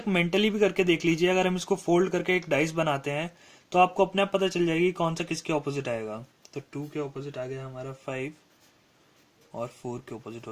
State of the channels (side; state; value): both; identical; correlation 1.00